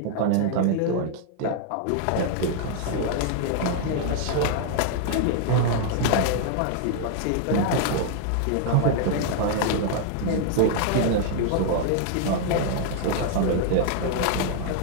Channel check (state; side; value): different; both; correlation 0.00